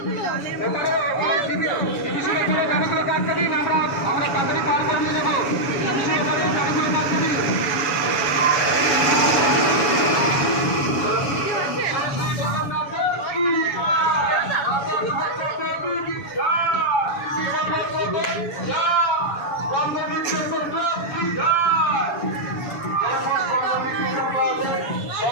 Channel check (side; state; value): right; late; 7.1 ms